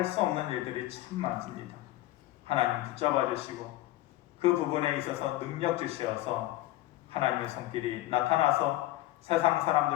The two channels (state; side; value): quieter; right; 16.2 dB